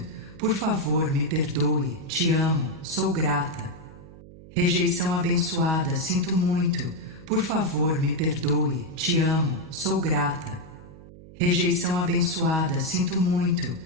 Por favor, me perdoe. Te amo, sou grata. Rejeição abençoada, sinto muito. Por favor, me perdoe. Te amo, sou grata. Rejeição abençoada, sinto muito.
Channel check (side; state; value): right; noise; hum, 19 dB below the sound